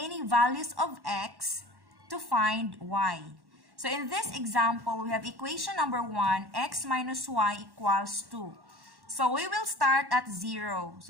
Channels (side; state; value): left; late; 1.1 ms